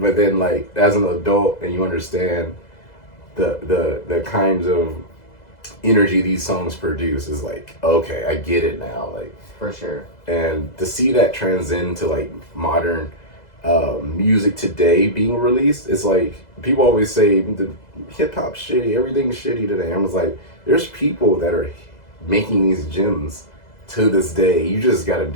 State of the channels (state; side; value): late; right; 2.0 ms